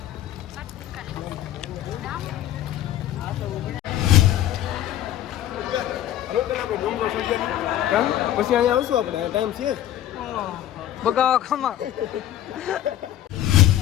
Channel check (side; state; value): right; quieter; 12.5 dB